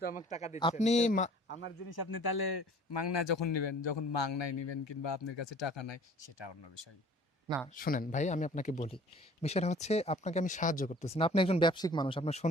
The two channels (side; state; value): both; normal; correlation 0.50